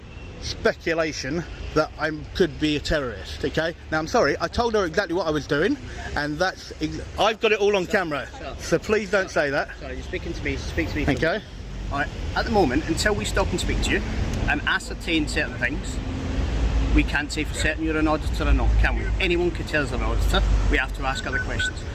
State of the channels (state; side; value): identical; both; correlation 1.00